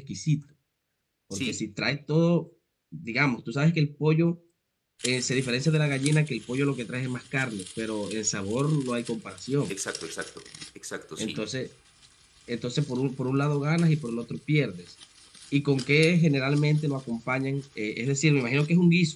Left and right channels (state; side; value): identical; both; correlation 1.00